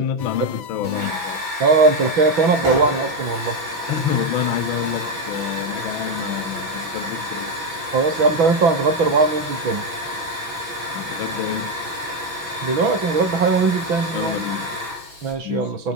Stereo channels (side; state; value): left; late; 6.0 ms